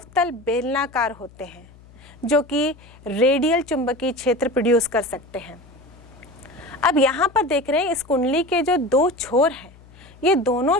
बेलनाकार होते हैं, जो कि रेडियल चुंबकीय क्षेत्र प्रोड्यूस कर सकते हैं। अब यहाँ पर देख रहे हैं इस कुंडली के जो दो छोर हैं, ये दोनों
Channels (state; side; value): noise; left; hum, 24 dB below the sound